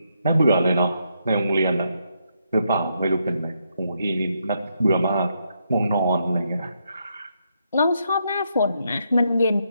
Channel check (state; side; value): inverted; both; correlation -0.78